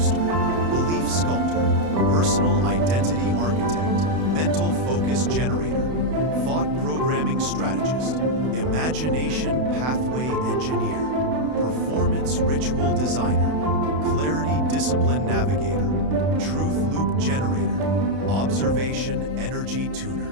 belief sculptor, personal identity architect, mental focus generator, thought programming strategist, imagination pathway engineer, performance ritual designer, clarity discipline navigator, truth loop generator, observation energy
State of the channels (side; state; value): left; late; 32 ms